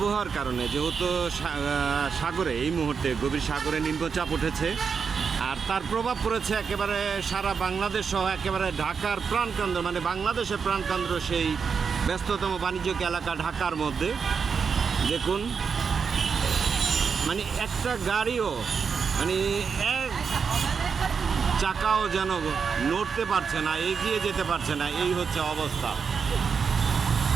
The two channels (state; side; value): quieter; left; 6.0 dB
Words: কারণে, যেহেতু সাগরে এই মুহূর্তে গভীর সাগরে নিম্নচাপ উঠেছে আর তার প্রভাব পড়েছে একেবারে সারা বাংলাদেশ সহ একেবারে ঢাকার প্রাণকেন্দ্র, মানে বাংলাদেশের প্রাণকেন্দ্র সেই ব্যস্ততম বাণিজ্যিক এলাকা ঢাকার মধ্যে। দেখুন মানে একটা গাড়িও মানে এক চাকাও যেন নড়তে পারছে না, এগিয়ে যেতে পারছে না, এই হচ্ছে অবস্থা।